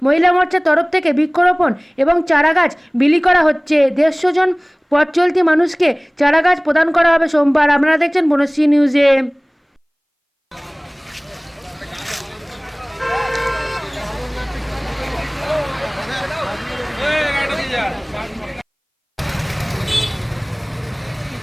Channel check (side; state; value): both; identical; correlation 1.00